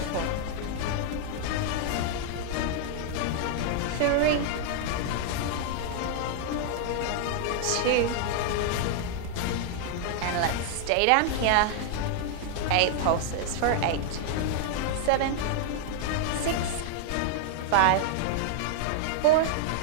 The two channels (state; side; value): different; both; correlation 0.00